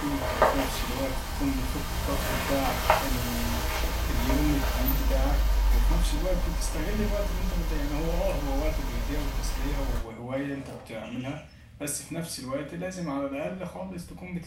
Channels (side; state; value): both; identical; correlation 1.00